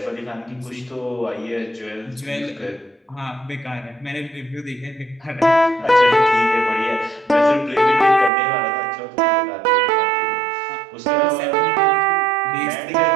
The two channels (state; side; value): drops out; left; at 8.3 s